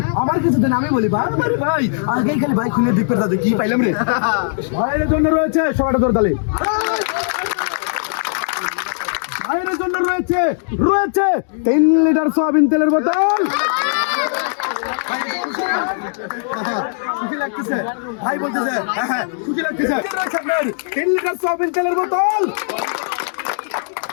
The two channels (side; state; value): right; silent; digital silence